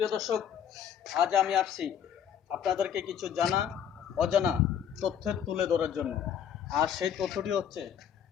সুপ্রিয় দর্শক, আজ আমি আসছি আপনাদেরকে কিছু জানা অজানা তথ্য তুলে ধরার জন্য। আর সেই তথ্যটি হচ্ছে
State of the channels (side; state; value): right; quieter; 8.8 dB